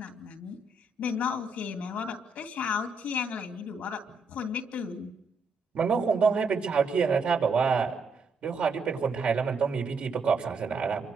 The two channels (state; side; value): quieter; left; 3.3 dB